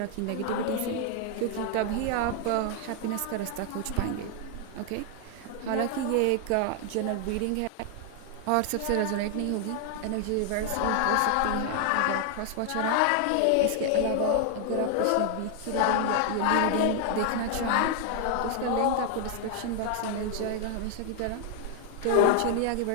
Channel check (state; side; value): different; both; correlation 0.00